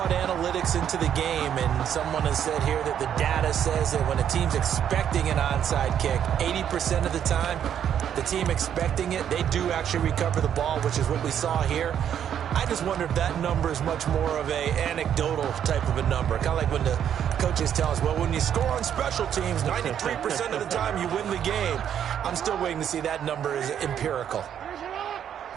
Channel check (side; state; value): left; quieter; 9.3 dB